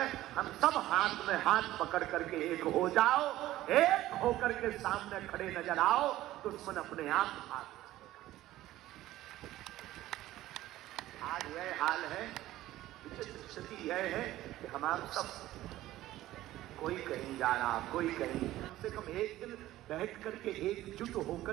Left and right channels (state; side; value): quieter; left; 15.3 dB